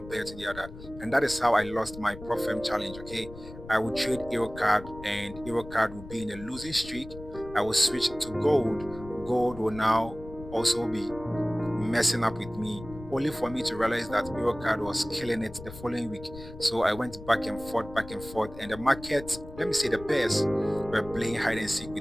pair to the other. And that is how I lost my Profem challenge, okay? I would trade Euro card and Euro card would be in a losing streak. I will switch to gold. Gold will now also be messing up with me, only for me to realize that Eurocard was killing it the following week. So I went back and forth, and the market, let me say the pairs, were playing hide and seek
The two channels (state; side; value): noise; left; rumble, 15 dB below the sound